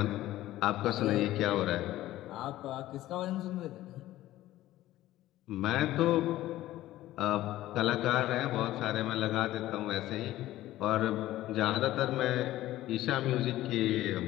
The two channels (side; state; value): right; quieter; 15.2 dB